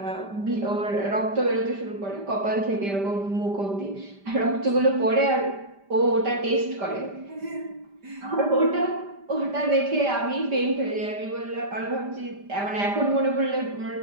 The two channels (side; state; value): left; late; 5.0 ms